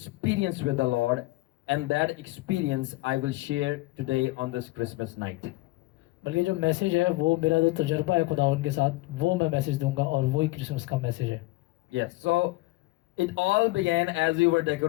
with the Lord, and that experience I will share today on this Christmas night. बल्कि जो मैसेज है वो मेरा जो तजर्बा है खुदावन के साथ, वो मैं मैसेज दूंगा और वही क्रिसमस का मैसेज है। Yes, so it all began as we were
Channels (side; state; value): right; quieter; 20.8 dB